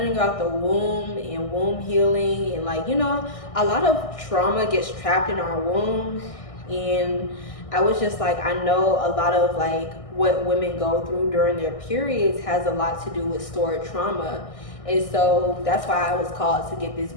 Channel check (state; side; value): late; right; 1.6 ms